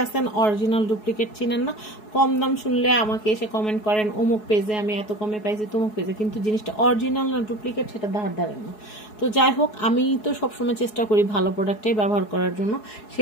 আছেন অরিজিনাল ডুপ্লিকেট চিনেন না, কম দাম শুনলে আমাকে এসে কমেন্ট করেন অমুক পেজে আমি এত কমে পাইছি, তমুক পেজে, কিন্তু জিনিসটা অরিজিনাল না ডুপ্লিকেট সেটা ধারেন না। তো যাই হোক, আমি তো সবসময় চেষ্টা করি ভালো প্রোডাক্টটাই ব্যবহার করার জন্য।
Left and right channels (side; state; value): right; late; 4.7 ms